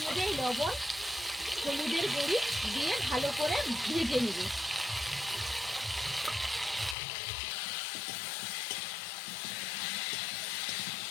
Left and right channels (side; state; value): right; drops out; at 7.0 s